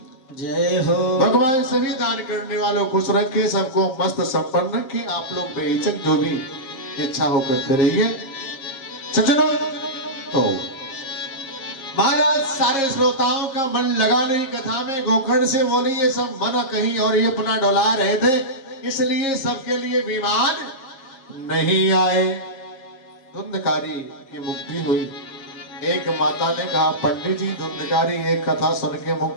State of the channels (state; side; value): late; right; 7.6 ms